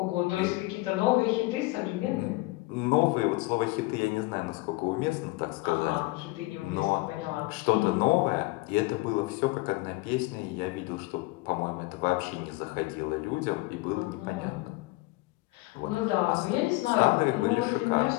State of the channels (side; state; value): right; quieter; 21.8 dB